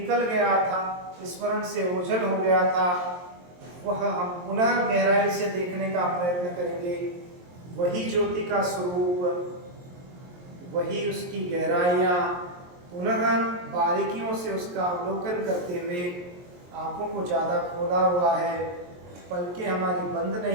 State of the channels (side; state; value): left; late; 23 ms